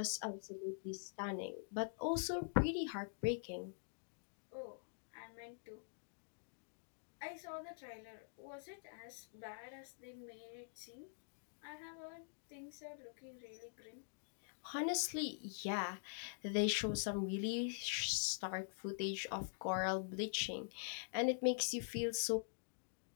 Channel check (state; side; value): silent; right; digital silence